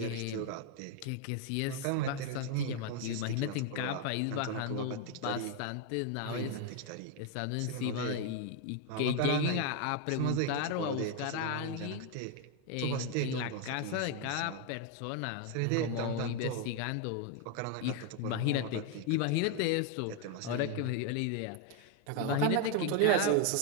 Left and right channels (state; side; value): different; both; correlation 0.01